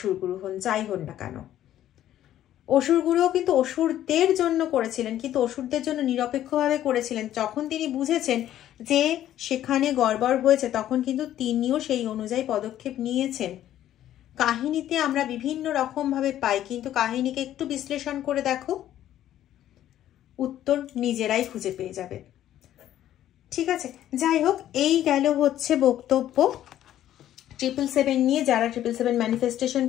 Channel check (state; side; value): quieter; right; 12.1 dB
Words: গুরু হন, যাই হন না কেন। অসুর গুরুও কিন্তু অসুরদের জন্য করেছিলেন, কিন্তু অসুরদের জন্য নিরপেক্ষভাবে করেছিলেন। যখন তিনি বুঝেছেন যে সেখানে গড়বড় হয়েছে, তখন কিন্তু তিনিও সেই অনুযায়ী পদক্ষেপ নিয়েছেন। কাহিনীতে আমরা বিভিন্ন রকমভাবে পাই, কিন্তু কাহিনীকে একটু বিশ্লেষণ করে দেখো, উত্তর নিজেরাই খুঁজে পেয়ে যাবে। ঠিক আছে, যাই হোক, এই গেল হচ্ছে বক্তব্য 777 নিয়ে। যারা 777 ম্যানিফেস্টেশন